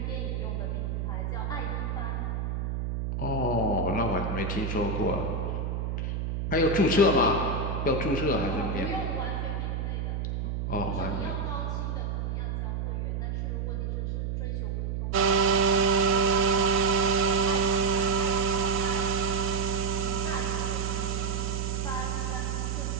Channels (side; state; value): right; noise; hum, 2 dB below the sound